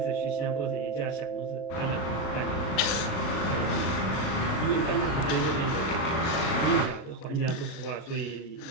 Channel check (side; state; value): right; late; 37 ms